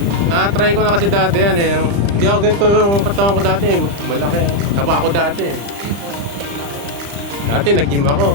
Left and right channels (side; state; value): left; late; 35 ms